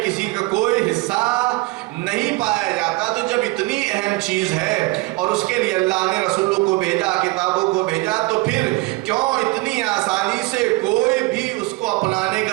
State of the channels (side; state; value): left; quieter; 22.9 dB